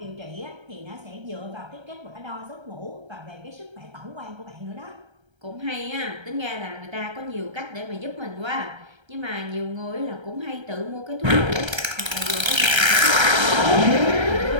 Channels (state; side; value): late; left; 1.3 ms